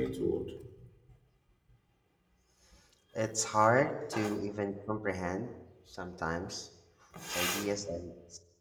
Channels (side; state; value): both; identical; correlation 1.00